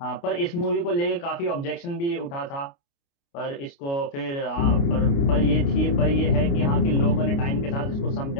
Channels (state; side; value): late; right; 29 ms